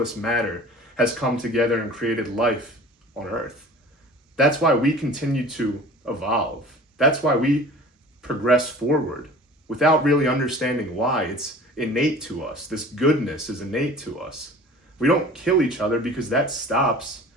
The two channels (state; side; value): normal; both; correlation 0.43